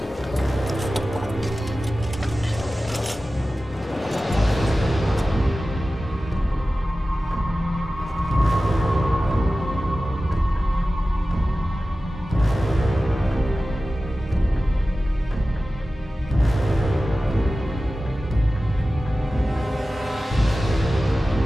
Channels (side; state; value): both; normal; correlation 0.95